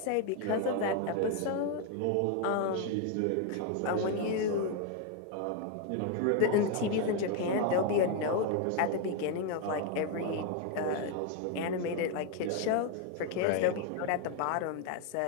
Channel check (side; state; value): both; different; correlation 0.01